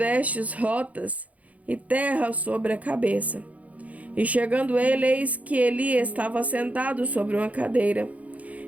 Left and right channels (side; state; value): left; late; 0.070 ms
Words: rotas e terra sobre a cabeça. E chegando ele, eis que Eli estava sentado sobre uma cadeira,